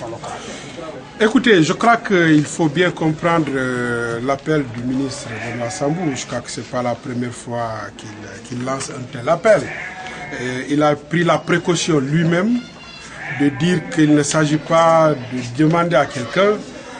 locales? Écoutez, je crois qu'il faut bien comprendre l'appel du ministre Thomas Sambou. Je crois que ce n'est pas la première fois qu'il lance un tel appel. Il a pris la précaution lui-même de dire qu'il ne s'agit pas de demander à quelqu'un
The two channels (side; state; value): both; identical; correlation 1.00